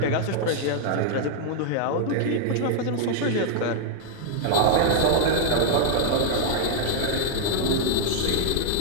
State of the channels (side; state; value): both; different; correlation 0.00